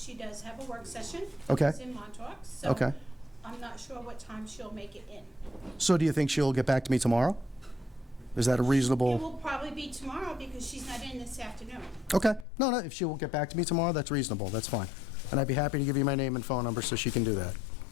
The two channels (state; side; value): drops out; right; at 12.5 s